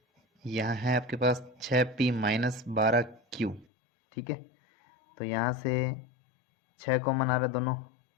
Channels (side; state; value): right; drops out; at 3.7 s